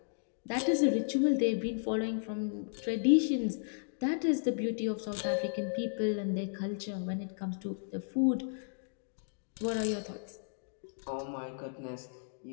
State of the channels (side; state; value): right; silent; digital silence